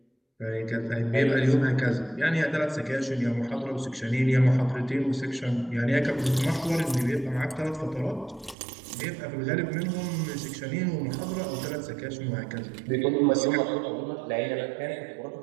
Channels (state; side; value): drops out; left; at 8.6 s